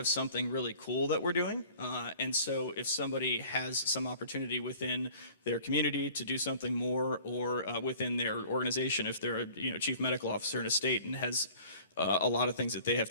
something really cool that we're doing. And so if somebody has some opportunity within their community to do something more, or within their organization, if they're a chief medical officer in a state and has a lot of things that they have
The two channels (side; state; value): both; inverted; correlation -0.49